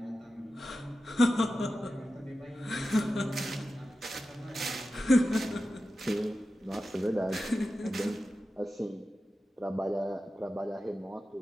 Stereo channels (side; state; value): both; normal; correlation 0.93